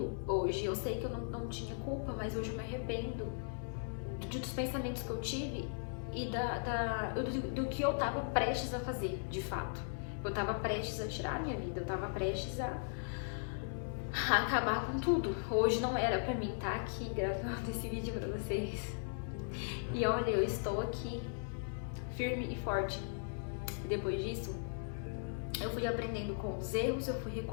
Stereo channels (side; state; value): right; silent; digital silence